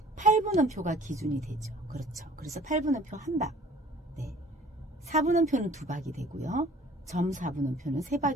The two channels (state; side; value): normal; both; correlation 0.51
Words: 8분음표가 기준이 되죠. 그렇죠. 그래서 8분음표 한 박. 4분음표는 두 박이 되고요. 점 4분음표는 세